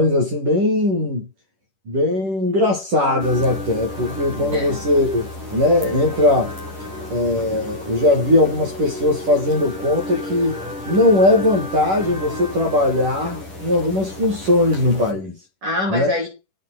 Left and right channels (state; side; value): late; left; 10 ms